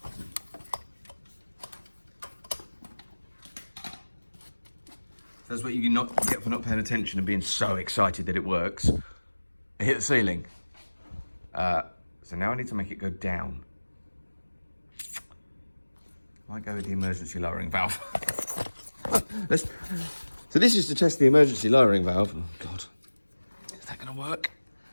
That's what you get for not paying attention and being so excited that it works. It hit the ceiling. So now I need to make it go down. I might go with the emergency lowering valve. So this is to test the emergency lowering valve. Oh God, is that gonna work?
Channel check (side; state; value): both; inverted; correlation -1.00